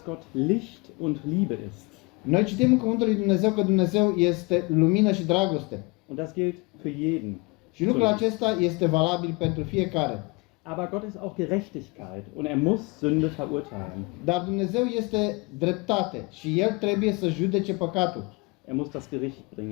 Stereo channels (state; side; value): quieter; right; 27.0 dB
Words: Gott Licht und Liebe ist. Noi citim în Cuvântul lui Dumnezeu că Dumnezeu este lumină și dragoste. Und das gilt für jeden. Și lucrul acesta este valabil pentru fiecare. Aber Gott ist auch Gerechtigkeit und er muss Sünde verurteilen. Dar Dumnezeu este dreptate și El trebuie să judece păcatul. Er muss das Gericht